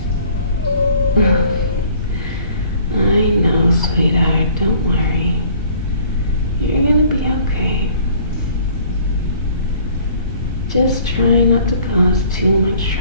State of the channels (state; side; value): inverted; both; correlation -0.54